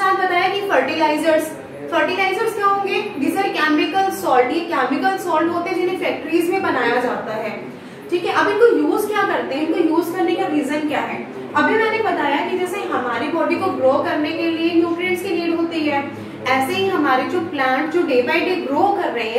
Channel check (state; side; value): identical; both; correlation 1.00